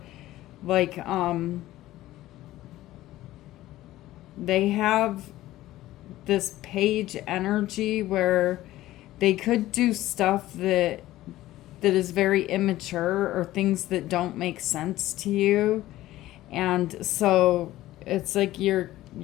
like they have this Page energy where they could do stuff that is very immature, or things that don't make sense to you. And so it's like you're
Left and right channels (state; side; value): quieter; right; 15.6 dB